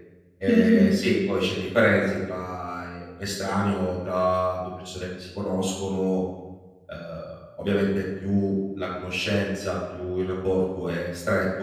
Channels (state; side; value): identical; both; correlation 1.00